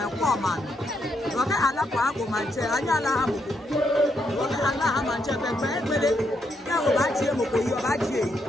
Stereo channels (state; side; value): normal; both; correlation 0.78